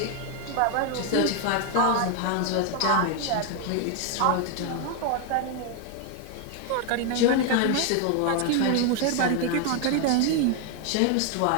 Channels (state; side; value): different; both; correlation 0.01